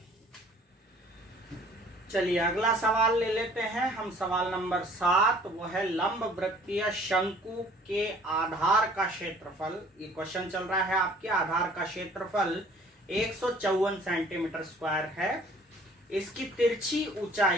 चलिए अगला सवाल ले लेते हैं हम। सवाल नंबर 7, वो है लंब वृत्तीय शंकु के आधार का क्षेत्रफल। ये क्वेश्चन चल रहा है आपके। आधार का क्षेत्रफल 154 सेंटीमीटर स्क्वायर है। इसकी तिरछी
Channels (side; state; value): both; normal; correlation 0.54